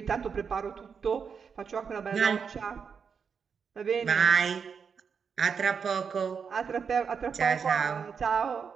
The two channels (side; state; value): left; quieter; 6.3 dB